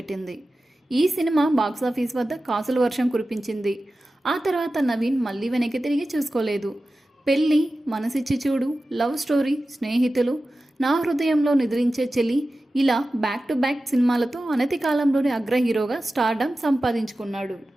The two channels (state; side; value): normal; both; correlation 0.94